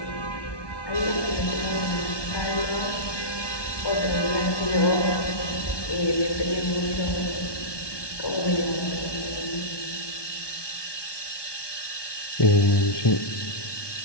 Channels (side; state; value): right; late; 1.2 ms